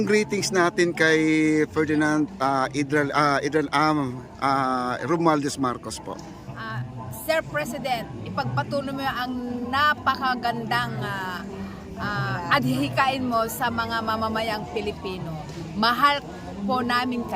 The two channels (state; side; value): identical; both; correlation 1.00